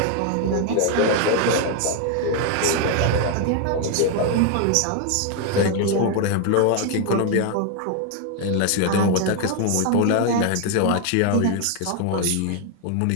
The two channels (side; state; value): both; different; correlation 0.01